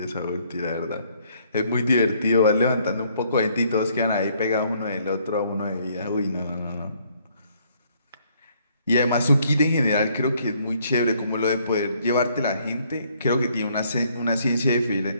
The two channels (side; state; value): both; inverted; correlation -0.66